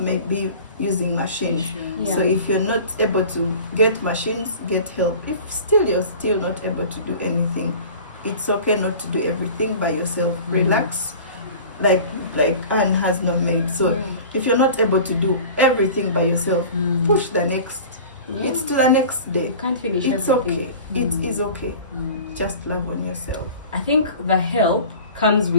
be using machines. Yeah. So if you're not able to get machines, get help. If still you're still not able to do anything, it's okay not to do everything by yourself. Relax, like Anne has no maid. So if you're not able to do everything by yourself, push the next. It's to the next day. You can't finish It's everything. okay. It is okay. Just love on yourself. I think the help comes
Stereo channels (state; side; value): inverted; both; correlation -0.40